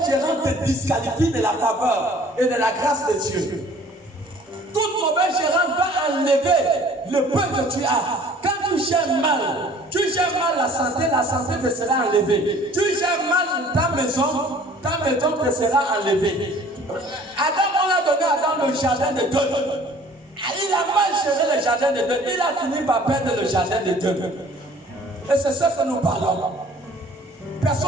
gérance te disqualifie de la faveur et de la grâce de Dieu. Toute mauvaise gérance va enlever le peu que tu as. Quand tu gères mal la santé te sera enlevée. Tu gères mal ta maison te sera enlevée. Adam, on l'a donné à Adam le jardin de Dieu. Il a mal géré le jardin de Dieu. Il a fini par perdre le jardin de Dieu. Et c'est ce que nous parlons.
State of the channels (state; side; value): normal; both; correlation 0.52